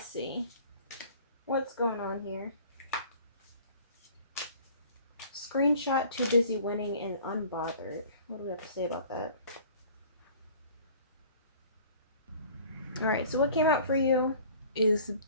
see what's going on here. Screenshot, too busy winning, and unbothered. What do we have to say about that? Alright, so what came out for you is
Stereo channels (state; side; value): inverted; both; correlation -0.49